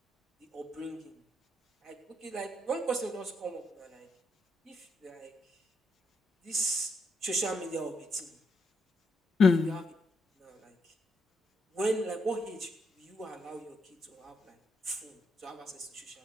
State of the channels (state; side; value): normal; both; correlation 0.79